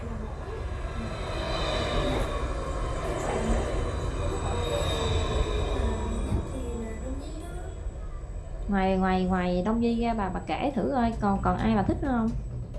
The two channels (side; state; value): both; identical; correlation 1.00